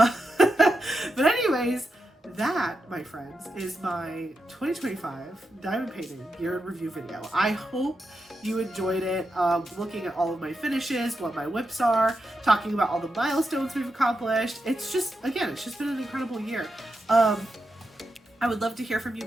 anyways, that, my friends, is my 2025 diamond painting year in review video. I hope you enjoyed it, looking at all of my finishes, what my whips are, talking about all the milestones we've accomplished. It's just been an incredible year. I would love to hear from you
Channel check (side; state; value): both; normal; correlation 0.87